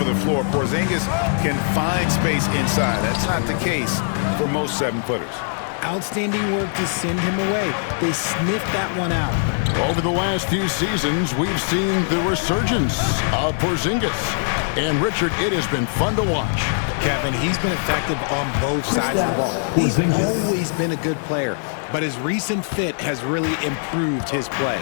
the floor, Porzingis can find space inside. That's not the case for most 7-footers. outstanding work to send him away. They sniffed that one out. Over the last few seasons, we've seen the resurgence of Porzingis. And Richard, it has been fun to watch. Kevin, he's been effective on both sides of the ball. He's always been a good player, but his recent fit has really improved his play.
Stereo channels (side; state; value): right; silent; digital silence